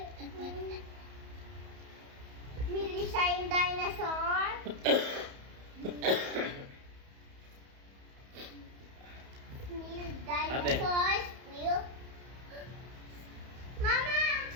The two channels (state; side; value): late; left; 31 ms